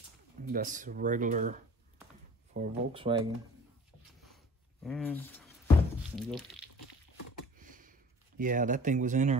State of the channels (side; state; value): both; normal; correlation 0.46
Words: That's regular for Volkswagen. And there you go. Yeah, that thing was in